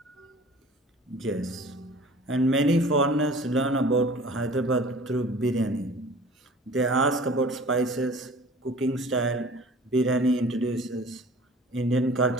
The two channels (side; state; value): both; normal; correlation 0.45